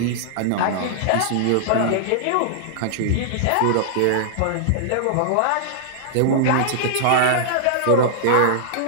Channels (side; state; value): both; different; correlation -0.01